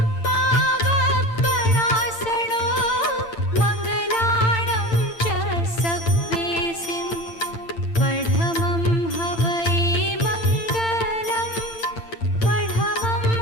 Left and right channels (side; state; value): right; late; 8.9 ms